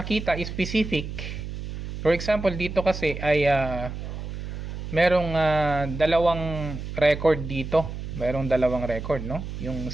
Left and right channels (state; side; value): noise; right; hum, 7 dB below the sound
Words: specific, for example, dito kasi ay merong dalawang record dito. Merong dalawang record, no?